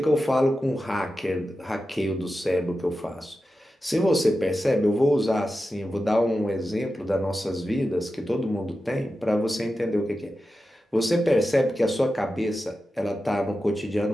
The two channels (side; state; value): both; normal; correlation 0.92